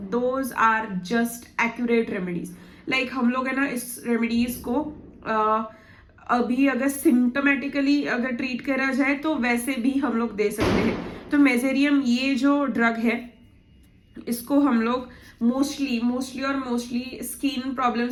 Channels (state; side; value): identical; both; correlation 1.00